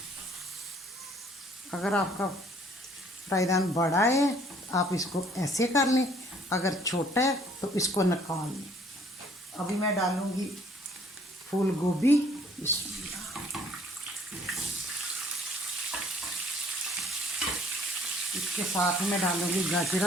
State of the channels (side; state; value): both; normal; correlation 0.59